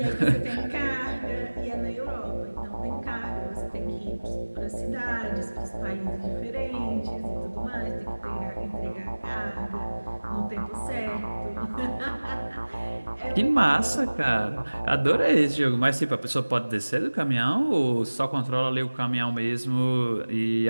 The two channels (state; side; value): inverted; both; correlation -1.00